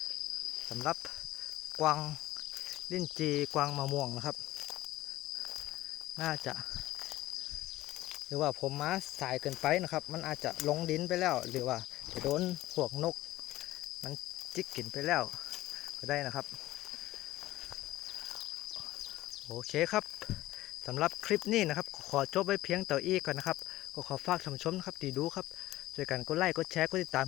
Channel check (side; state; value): right; quieter; 16.2 dB